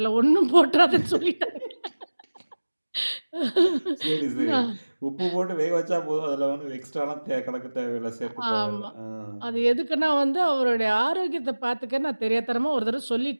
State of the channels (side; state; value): both; inverted; correlation -1.00